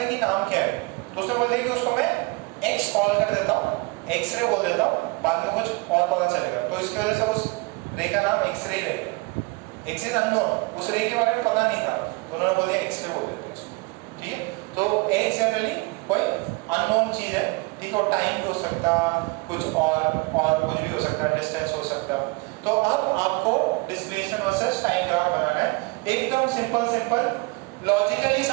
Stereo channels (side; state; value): left; quieter; 26.3 dB